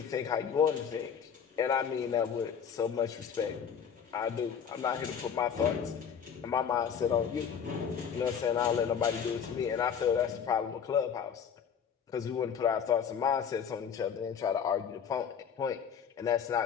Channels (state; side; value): quieter; right; 7.4 dB